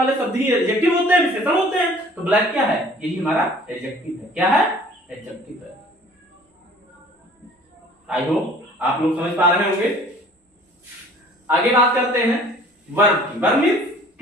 शब्द ही एडजेक्टिव होते हैं, विशेषण होते हैं। तो ब्लैक क्या है? यही हमारा एडजेक्टिव है। क्या है? एडजेक्टिव है। आई होप आप लोग समझ पा रहे होंगे। आगे बात करते हैं वर्ब की। वर्ब मींस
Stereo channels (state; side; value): normal; both; correlation 0.51